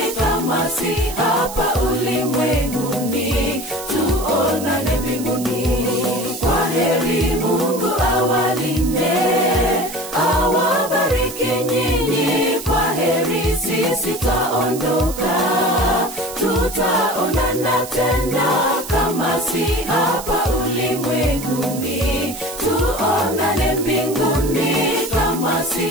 kama si hapa ulimwenguni. Tuonane mbinguni. Kwaheri, Mungu awalinde, awabariki nyinyi. Kwaheri, sisi taondoka, tutaonana tena kama si hapa ulimwenguni. Tuonane mbinguni kama si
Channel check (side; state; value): right; noise; hiss, 12 dB below the sound